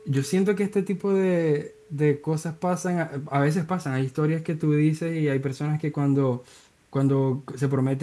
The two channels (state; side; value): identical; both; correlation 1.00